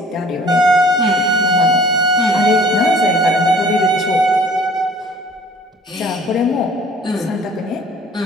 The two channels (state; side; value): normal; both; correlation 0.51